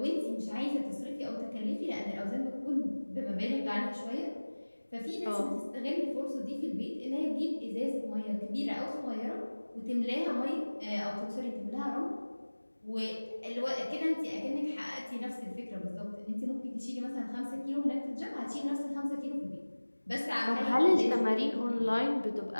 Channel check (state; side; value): inverted; both; correlation -1.00